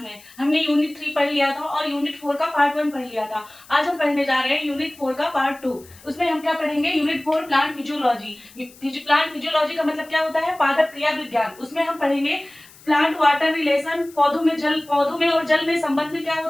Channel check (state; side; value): noise; left; hiss, 23 dB below the sound